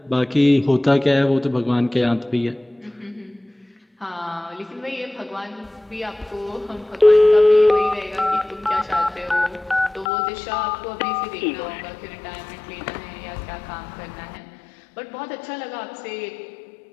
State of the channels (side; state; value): right; drops out; at 10.1 s